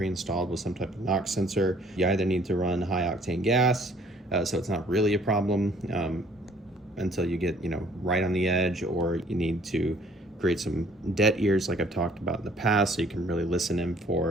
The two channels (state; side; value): normal; both; correlation 0.58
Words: with some type of knock sensor, you either need to run high octane gas, so it's not really a problem until you get right on the edge, or you need to create some dead ears like I've talked about in the past, so you can really listen in